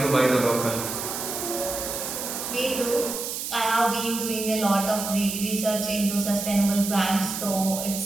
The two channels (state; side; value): noise; right; hiss, 5 dB below the sound